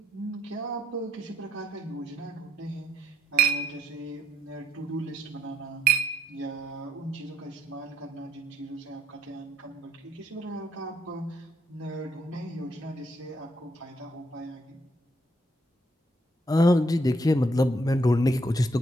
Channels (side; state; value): both; normal; correlation 0.75